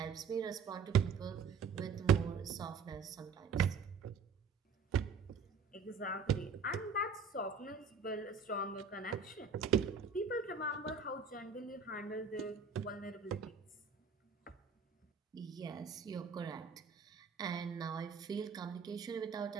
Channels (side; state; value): left; quieter; 5.5 dB